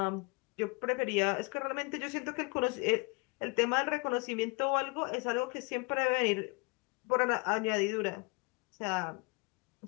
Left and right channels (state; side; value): quieter; right; 29.7 dB